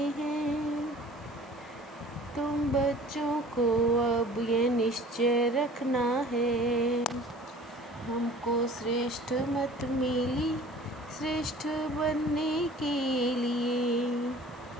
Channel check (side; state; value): both; normal; correlation 0.47